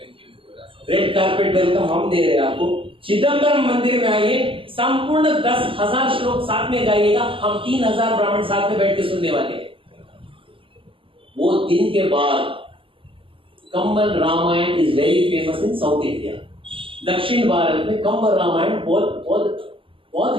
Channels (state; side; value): late; left; 0.25 ms